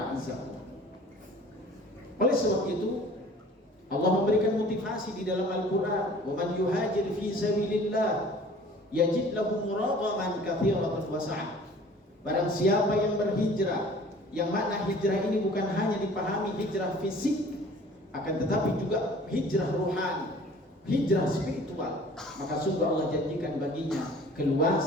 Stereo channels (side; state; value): both; normal; correlation 0.49